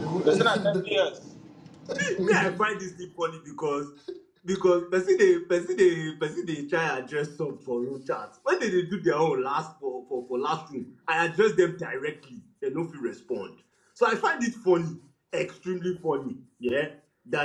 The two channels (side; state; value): both; identical; correlation 1.00